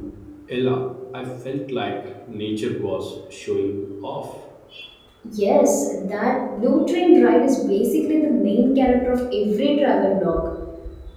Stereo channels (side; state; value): both; identical; correlation 1.00